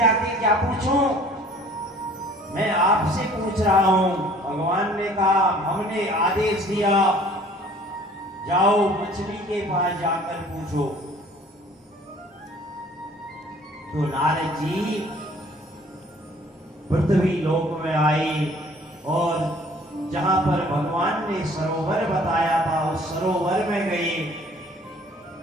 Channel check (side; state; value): both; normal; correlation 0.53